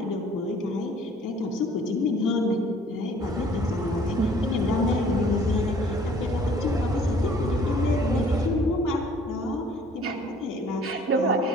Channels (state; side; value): normal; both; correlation 0.55